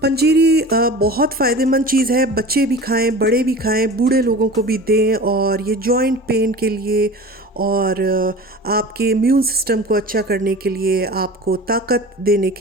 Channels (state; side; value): normal; both; correlation 0.37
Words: पंजीरी बहुत फ़ायदेमंद चीज़ है। बच्चे भी खाएं, बड़े भी खाएं, बूढ़े लोगों को भी दें। और ये जॉइंट पेन के लिए, और आपके इम्यून सिस्टम को अच्छा करने के लिए, आपको ताकत देने